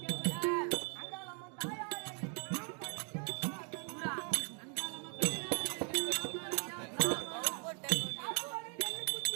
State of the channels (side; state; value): left; quieter; 38.0 dB